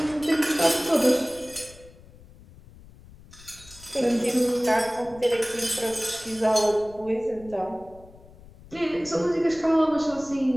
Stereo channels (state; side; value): noise; left; rumble, 22 dB below the sound